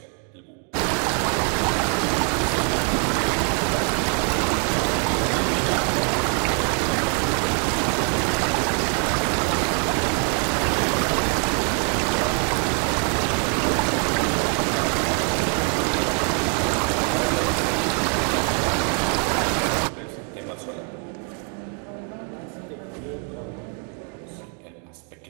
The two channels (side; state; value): left; quieter; 39.6 dB